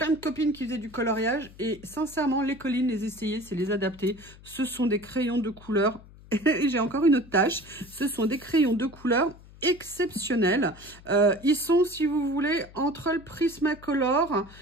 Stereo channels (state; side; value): noise; left; hum, 21 dB below the sound